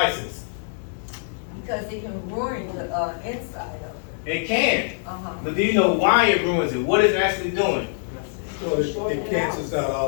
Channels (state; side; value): silent; right; digital silence